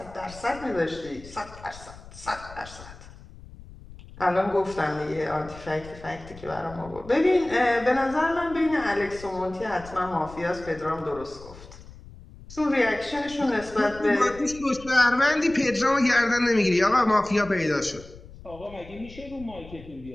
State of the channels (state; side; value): noise; left; rumble, 18 dB below the sound